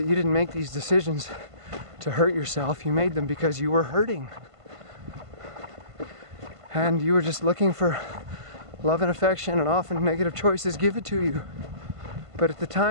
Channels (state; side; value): late; left; 1.5 ms